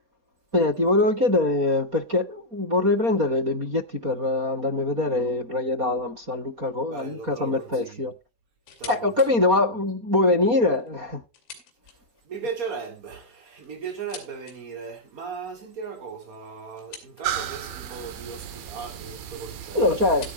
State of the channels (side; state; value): left; late; 4.2 ms